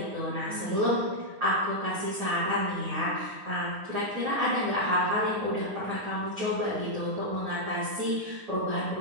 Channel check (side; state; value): left; late; 9.9 ms